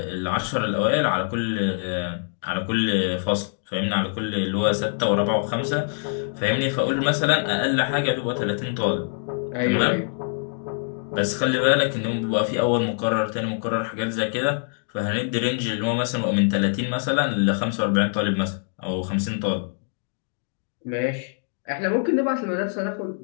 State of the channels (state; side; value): silent; right; digital silence